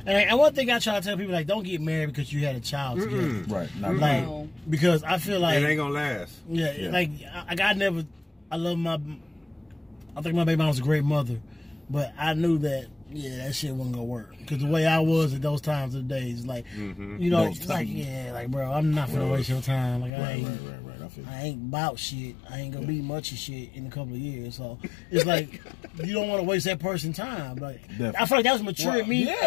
And one thing I try to tell people, like, don't get married because you had a child together. Right. Not like, because I feel like it ain't gonna last. Yeah. Like I love I think my baby mom was a great mother, but I knew that that shit wasn't gonna work because the way I was at those times of the days, like you know, it's like bro, I'm not gonna waste your time. Like I ain't about shit. I ain't gonna be much of shit in a couple of years. So it's like you don't want to waste that person's time. Like I feel like that was mature me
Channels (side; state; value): right; drops out; at 20.1 s